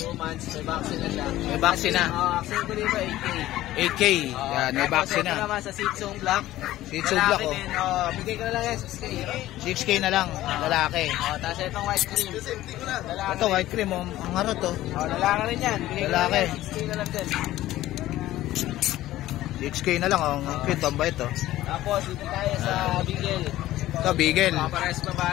2 months, may vaccine na siya. May vaccine na. Vaccine ko dito, 8K. 8K. Yan, may vaccine Ito na. naman sa Shih Tzu Black. Shih Tzu Black, Lalaki oh. din, bigay ko na lang yan, 6K. 6K na lang. Lalaki. Tapos itong white cream. Lalaki. Ito, white cream, oh. Ang harot, oh. Lalaki rin yan. Bigay ko na Lalaki. lang, 6K na lang din. 6K na lang, oh. Ang cute, ang bait, oh. Tapos, dito tayo sa Bigel. Ito, Beagle. Pares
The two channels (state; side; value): quieter; right; 15.2 dB